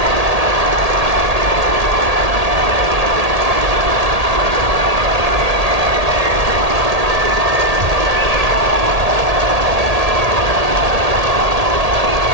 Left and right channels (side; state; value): left; late; 1.8 ms